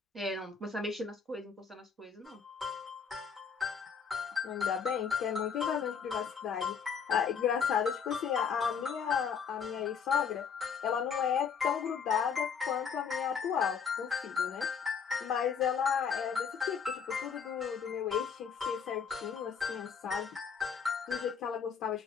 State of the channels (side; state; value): right; quieter; 6.6 dB